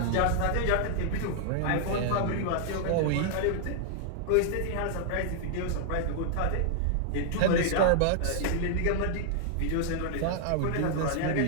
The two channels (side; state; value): both; different; correlation -0.01